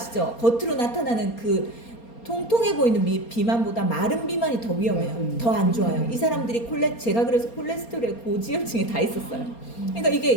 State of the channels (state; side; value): late; right; 4.3 ms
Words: 겉으로 나타나는 그 통통해 보이는 비만보다 마른 비만이 더 위험해요. 더 안 좋아요. 이 사람들이 제가 그래서 콜레스테롤에 고지혈증이 다 있었어요. 그러니까 이게